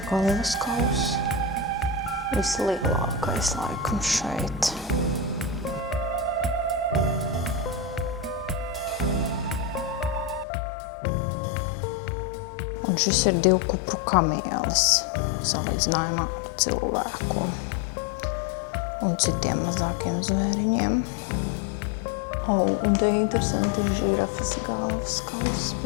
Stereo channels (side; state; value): right; drops out; at 10.5 s